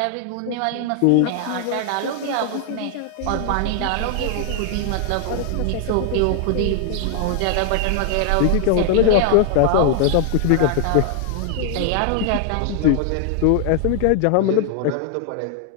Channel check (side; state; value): both; different; correlation 0.00